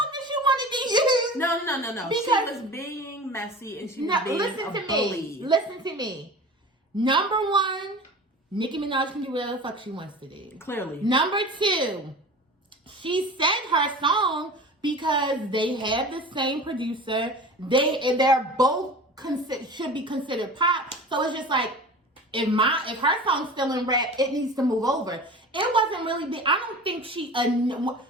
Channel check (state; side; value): normal; both; correlation 0.36